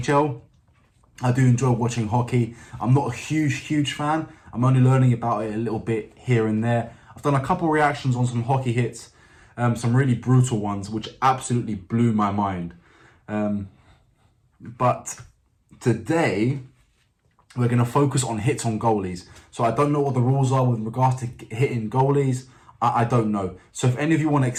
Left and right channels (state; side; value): identical; both; correlation 1.00